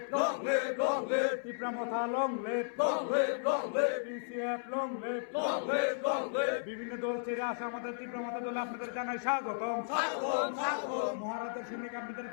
Tipra Motha long live, PCF long live. বিভিন্ন দল ছেড়ে আসা আমাদের তীব্রমথা দলে আপনাদের জানাই স্বাগত। মহারাজের সৈনিক আপনাদের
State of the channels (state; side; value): silent; right; 55 dB below the other